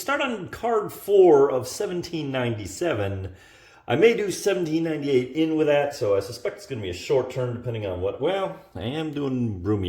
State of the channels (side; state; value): both; identical; correlation 1.00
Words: on card 4 of 1797. I may do 1798 in with that, so I suspect it's going to be a short turn depending on what, well, I am doing broomy